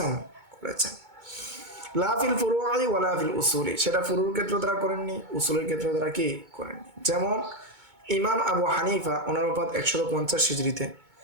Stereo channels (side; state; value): left; late; 2.2 ms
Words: লা ফিল ফুরু'i ওয়ালা ফিল উসুলি, সেটা ফুরুর ক্ষেত্রে তারা করেননি, উসুলের ক্ষেত্রে তারা কি করেননি। যেমন ইমাম আবু হানিফা 150 হিজরিতে,